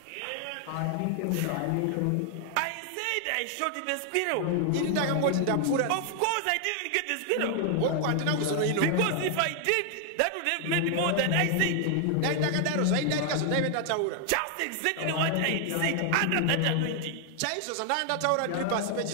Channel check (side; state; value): both; different; correlation 0.00